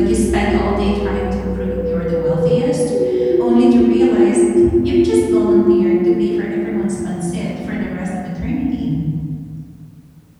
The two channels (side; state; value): both; identical; correlation 1.00